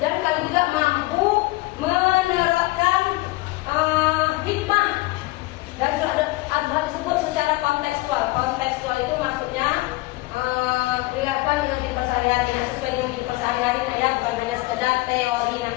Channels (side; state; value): right; quieter; 21.0 dB